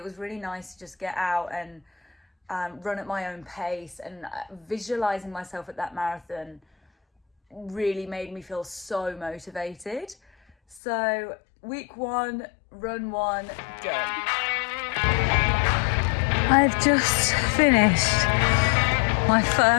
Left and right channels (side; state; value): right; drops out; at 10.8 s